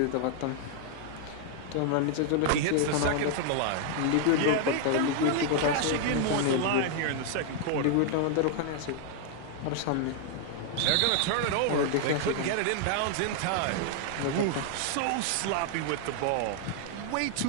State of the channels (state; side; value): different; both; correlation 0.00